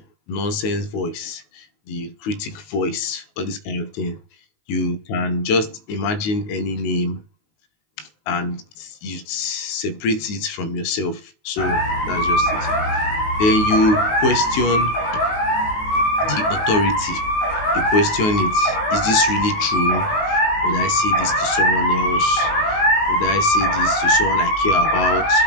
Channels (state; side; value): late; right; 19 ms